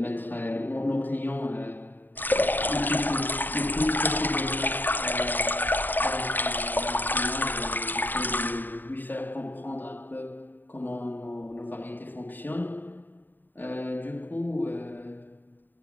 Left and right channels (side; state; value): right; late; 0.090 ms